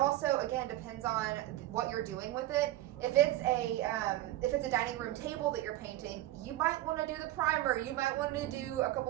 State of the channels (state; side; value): quieter; left; 15.5 dB